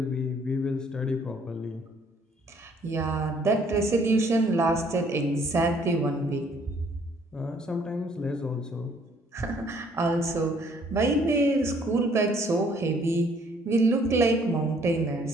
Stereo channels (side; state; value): both; normal; correlation 0.62